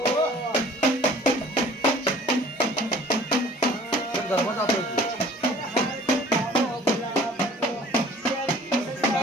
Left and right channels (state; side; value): normal; both; correlation 0.50